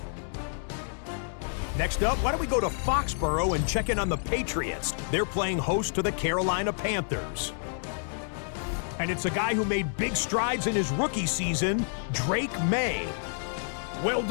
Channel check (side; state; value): right; silent; 59 dB below the other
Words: Next up, why don't we go to Foxborough and check in on the Patriots? They're playing host to the Carolina Panthers. And it's a guy who made big strides in his rookie season, Drake May. Well